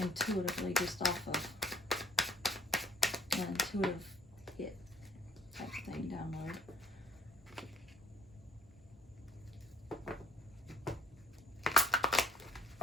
just off of an intuitive hit type thing download.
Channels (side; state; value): both; normal; correlation 0.54